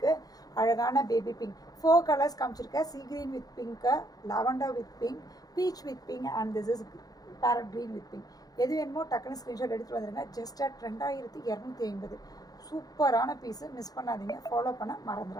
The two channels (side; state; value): right; late; 0.18 ms